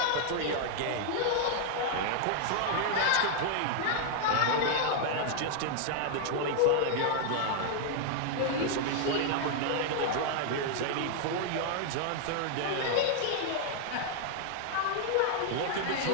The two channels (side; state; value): both; different; correlation 0.00